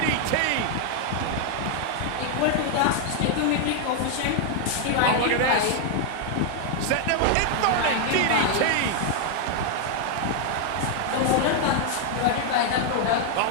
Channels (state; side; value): different; both; correlation 0.00